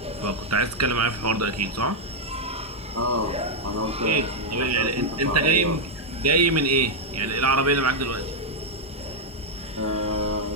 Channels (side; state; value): both; normal; correlation -0.01